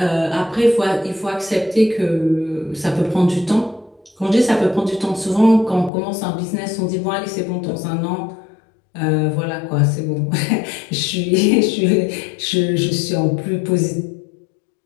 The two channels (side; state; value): right; drops out; at 5.9 s